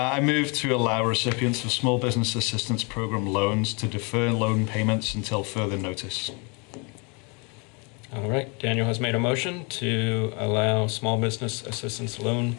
move to allow recipients of small business assistance program loans to defer loan payments until further notice. All right, Daniel has made a motion to allow small business assistance loan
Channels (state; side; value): quieter; right; 32.2 dB